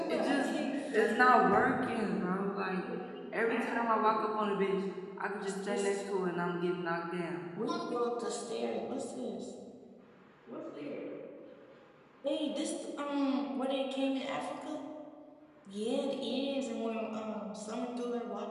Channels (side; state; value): both; identical; correlation 1.00